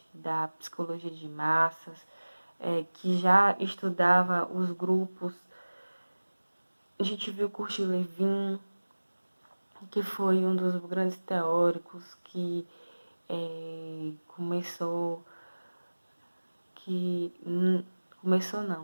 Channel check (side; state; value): both; inverted; correlation -1.00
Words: da psicologia de massas, que já estudava os grupos. A gente viu Kurt Lewin, que foi um dos grandes teóricos que